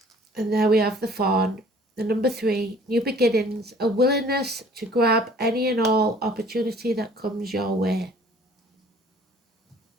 And there we have the fawn. The number 3, new beginnings, a willingness to grab any and all opportunity that comes your way.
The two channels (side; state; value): both; normal; correlation 0.53